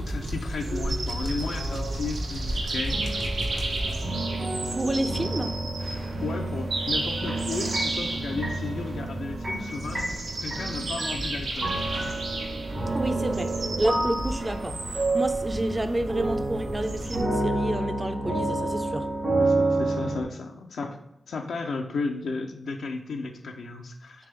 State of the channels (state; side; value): normal; both; correlation 0.90